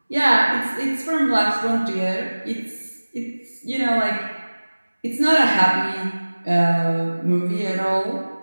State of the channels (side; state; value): both; inverted; correlation -1.00